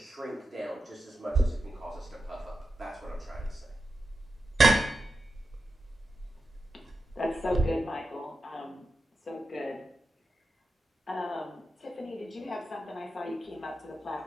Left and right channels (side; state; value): both; normal; correlation 0.90